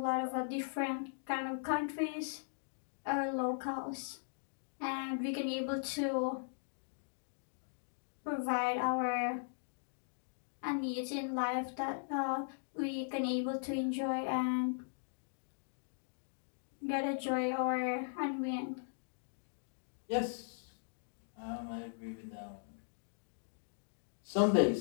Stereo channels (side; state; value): right; silent; digital silence